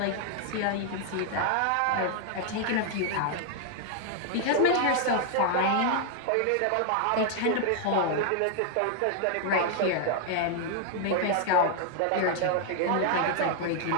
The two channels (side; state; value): both; different; correlation 0.00